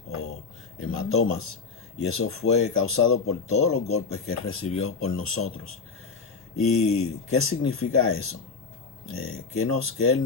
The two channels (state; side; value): quieter; right; 4.9 dB